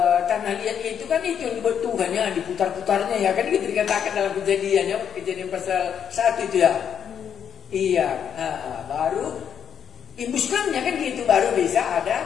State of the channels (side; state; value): right; quieter; 8.3 dB